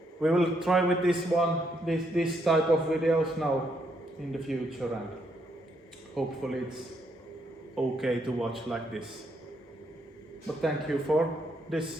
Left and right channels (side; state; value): both; normal; correlation 0.75